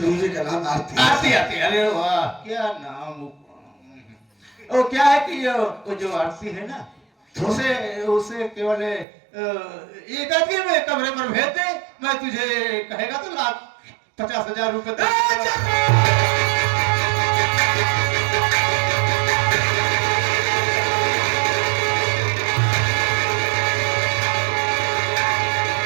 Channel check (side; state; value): left; drops out; at 9.1 s